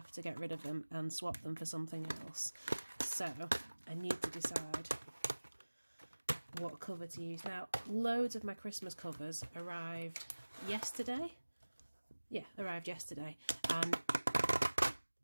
to get rid of them and swap them for something else. So I need to decide what cover to use. Now, loads of my Christmas covers arrived yesterday. Yeah, arrived yesterday, and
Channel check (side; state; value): both; inverted; correlation -1.00